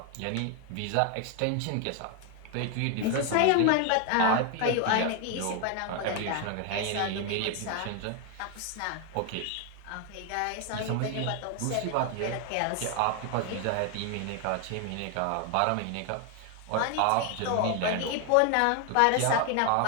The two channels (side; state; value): both; different; correlation 0.01